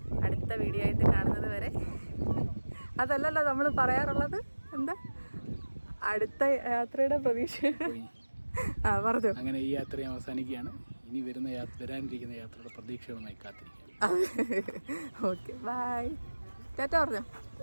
അടുത്ത വീഡിയോ ആയിട്ട് കാണുന്നത് വരെ, അതല്ലല്ലോ നമ്മൾ പറയാറുള്ളത്, എന്താ അടുത്ത യാത്രയുടെ പ്രതീക്ഷ പറഞ്ഞു. അങ്ങനെ ഈ യാത്ര അവസാനിക്കുകയാണ്. ഇനി വരാനിരിക്കുന്ന യാത്രയുടെ പ്രതീക്ഷകളുമായി കാത്തിരിക്കുക. ഓക്കെ, ബൈ, ടാറ്റ പറഞ്ഞോ.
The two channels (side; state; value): both; inverted; correlation -1.00